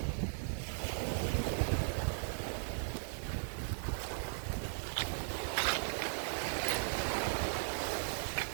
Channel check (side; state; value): left; silent; 53 dB below the other